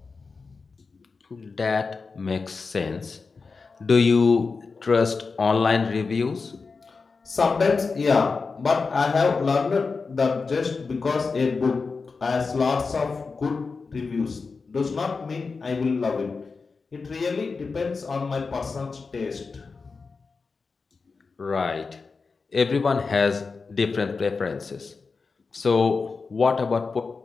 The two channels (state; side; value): quieter; right; 4.5 dB